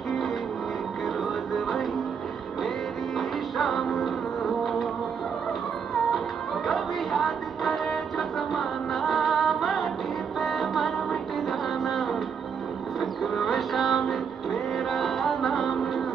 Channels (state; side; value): quieter; left; 6.7 dB